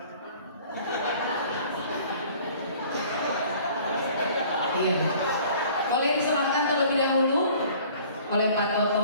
Iya. Boleh diserahkan terlebih dahulu oleh Pak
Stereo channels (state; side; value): inverted; both; correlation -0.51